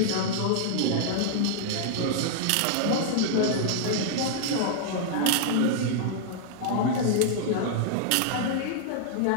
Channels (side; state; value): both; different; correlation -0.01